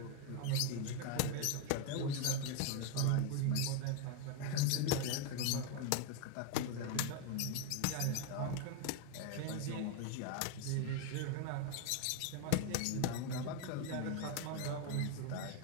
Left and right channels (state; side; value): different; both; correlation 0.01